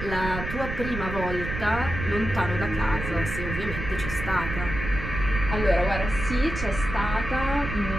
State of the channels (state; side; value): noise; right; rumble, 6 dB below the sound